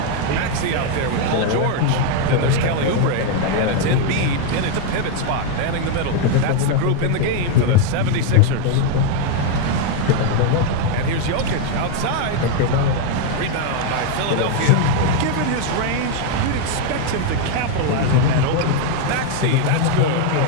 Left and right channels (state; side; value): different; both; correlation 0.01